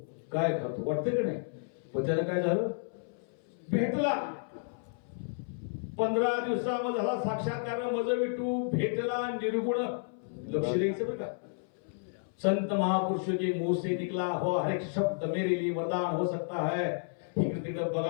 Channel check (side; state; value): right; silent; 57 dB below the other